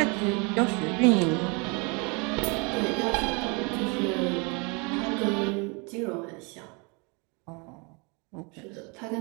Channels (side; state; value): left; quieter; 30.9 dB